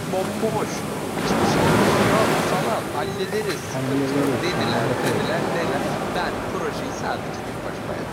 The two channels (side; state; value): both; identical; correlation 1.00